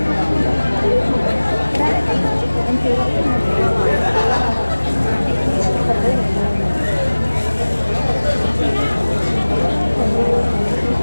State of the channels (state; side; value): inverted; both; correlation -1.00